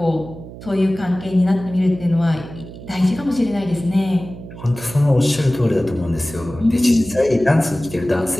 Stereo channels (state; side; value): noise; right; hum, 14 dB below the sound